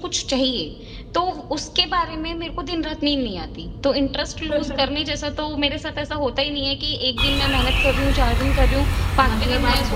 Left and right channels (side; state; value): both; identical; correlation 1.00